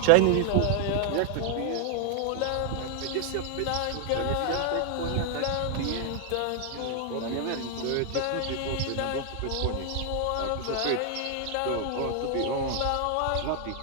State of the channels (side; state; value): both; different; correlation 0.00